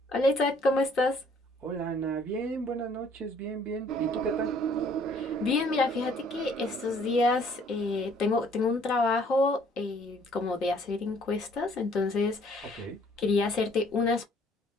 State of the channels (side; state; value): both; normal; correlation 0.60